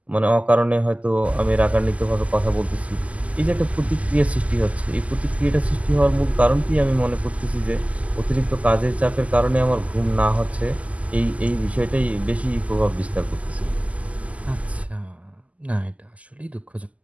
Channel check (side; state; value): left; late; 0.069 ms